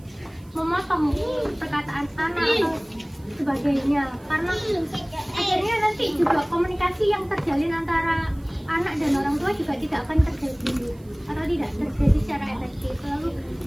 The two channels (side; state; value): right; noise; hiss, 30 dB below the sound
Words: memotong perkataan anak atau sebagainya, karena akhirnya nanti juga komunikasi yang terjalin antara anak dan orang tua juga tidak akan terjadi atau tidak terjadi secara efektif. Lalu